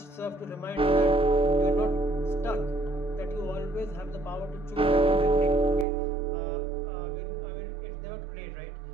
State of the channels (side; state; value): left; drops out; at 5.9 s